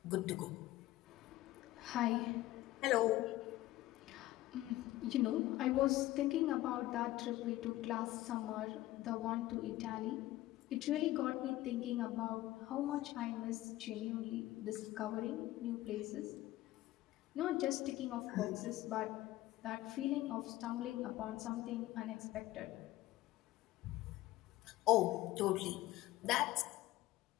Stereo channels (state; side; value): quieter; right; 16.1 dB